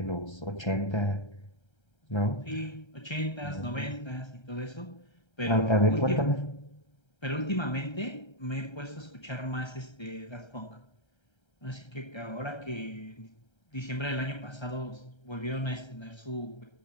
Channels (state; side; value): late; right; 1.3 ms